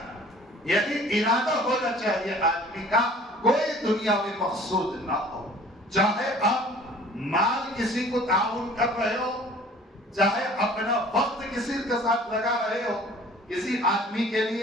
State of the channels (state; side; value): normal; both; correlation 0.49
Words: یہی ارادہ ہونا چاہیے آدمی کا. کوئی دنیاوی مقصود نہ ہو. چاہے آپ مال کسی کو تعاون کر رہے ہو، چاہے اپنا وقت کسی کے ساتھ لگا رہے ہو کسی آدمی کے